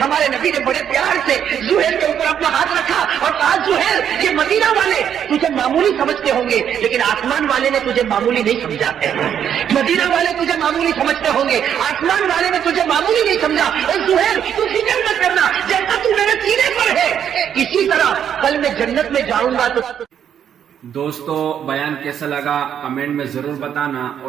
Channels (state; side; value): quieter; left; 9.0 dB